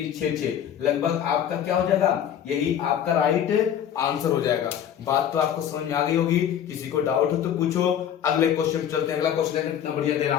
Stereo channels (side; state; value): right; quieter; 9.6 dB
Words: 6 6, लगभग आपका क्या हो जाएगा, यही आपका राइट आंसर हो जाएगा। बात तो आपको समझ में आ गई होगी, किसी को डाउट हो तो पूछो। अगले क्वेश्चन चलते हैं, अगला क्वेश्चन कितना बढ़िया दे रहा